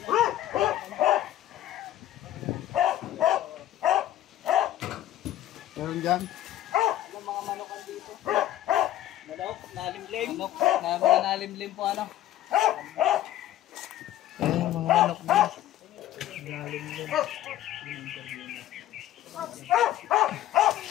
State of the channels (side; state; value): right; quieter; 13.2 dB